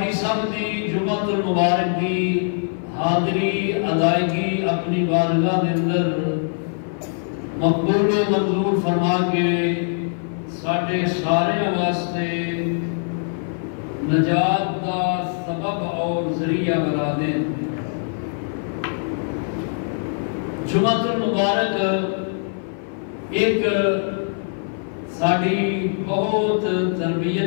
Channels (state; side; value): silent; right; 56 dB below the other